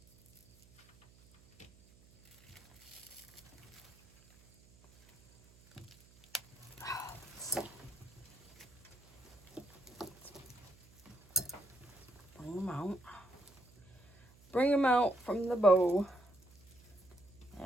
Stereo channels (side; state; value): right; noise; hum, 26 dB below the sound